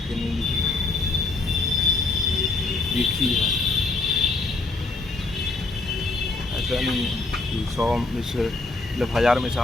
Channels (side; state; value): right; quieter; 3.4 dB